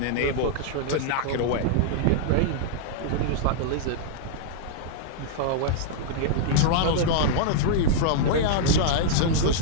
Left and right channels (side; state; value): both; different; correlation -0.01